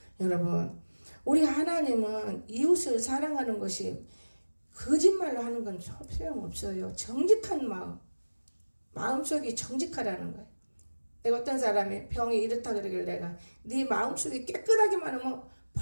여러분, 우리 하나님은 이웃을 사랑하는 것이 거짓말로 하는 건 소용없어요. 정직한 마음속이 정직하라는 거예요. 내가 어떤 사람이 병이 이렇다 그러길래 내가 네 마음속이 깨끗하기만 하면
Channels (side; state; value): both; inverted; correlation -1.00